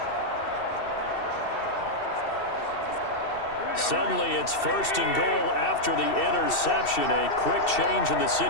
Suddenly it's 1st and goal after the interception. A quick change in the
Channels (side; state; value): right; late; 2.7 ms